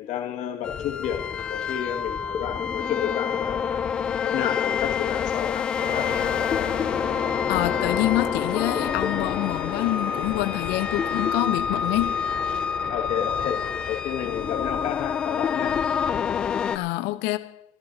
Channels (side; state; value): right; quieter; 8.6 dB